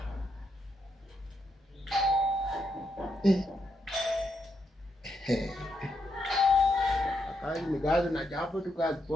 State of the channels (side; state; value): both; normal; correlation 0.81